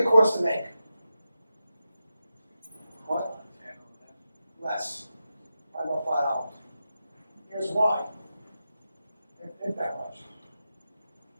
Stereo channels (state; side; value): inverted; both; correlation -0.90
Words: think it costs to make? What? Less. Probably about $5. Here's why. It ain't that much.